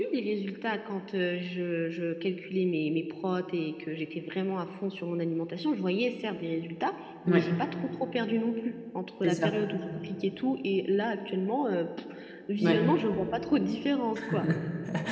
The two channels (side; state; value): both; identical; correlation 1.00